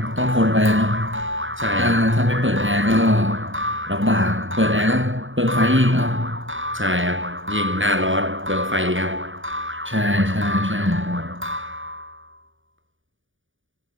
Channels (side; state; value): left; late; 0.57 ms